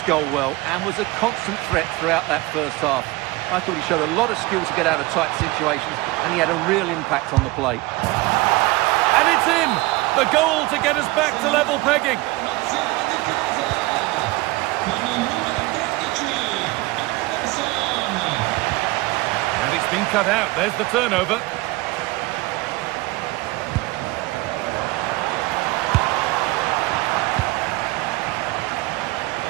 goal well and was a constant threat throughout that first half. I thought he showed a lot of skill to get out of tight situations, and he had a real impact on the play. And it's in! The goal to get us back to level pegging. And it's been cut out. There's the turnover.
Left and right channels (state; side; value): quieter; left; 21.1 dB